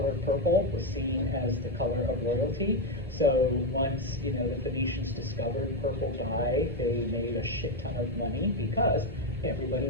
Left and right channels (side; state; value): both; normal; correlation 0.06